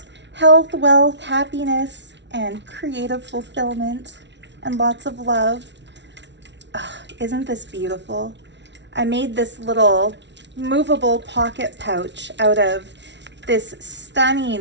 health, wealth, happiness, and creative fulfillment, and lots of love. Oh, isn't this beautiful? I made this little movable pocket pouch out of this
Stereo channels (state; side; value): late; left; 0.51 ms